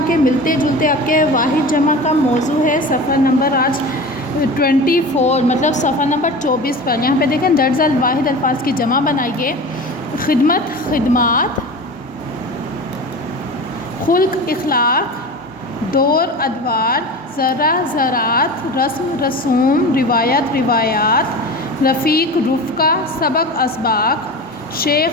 کے ملتے جلتے آپ کے واحد جمع کا موضوع ہے صفحہ نمبر آج 24 مطلب صفحہ نمبر 24 پر۔ یہاں پہ دیکھیں درج الواحد الفاظ کی جمع بنائیے۔ خدمت خدمات، خلق اخلاق، دور ادوار، ذرہ ذرات، رسم رسوم، روایت روایات، رفیق رفقہ، سبق اسباق،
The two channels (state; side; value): normal; both; correlation 0.32